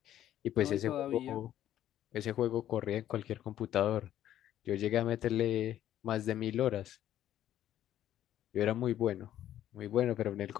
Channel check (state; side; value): quieter; right; 12.0 dB